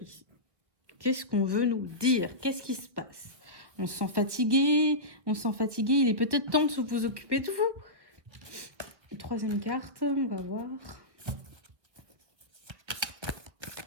ici? Qu'est-ce qu'on veut nous dire? Qu'est-ce qui se passe? On se sent fatigué, il est peut-être temps de vous occuper de vous. Troisième carte, on va voir.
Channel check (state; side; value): late; left; 1.7 ms